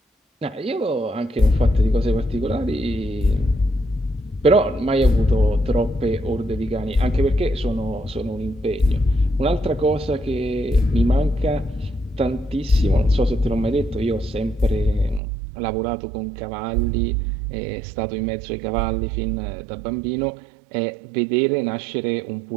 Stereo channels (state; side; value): drops out; left; at 15.2 s